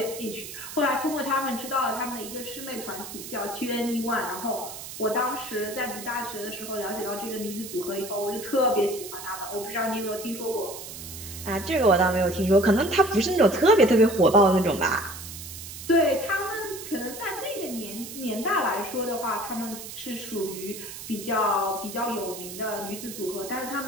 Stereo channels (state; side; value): noise; right; hiss, 11 dB below the sound